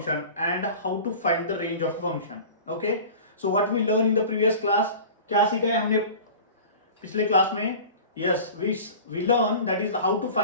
and how to find the range of a function. Okay, so what we learned in the previous class, क्या सीखा है हमने पिछले class में? Yes, we learned that is how to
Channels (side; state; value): both; inverted; correlation -0.39